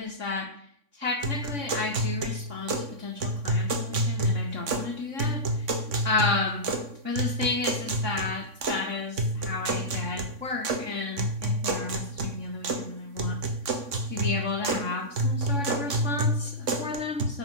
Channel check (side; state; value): left; late; 3.6 ms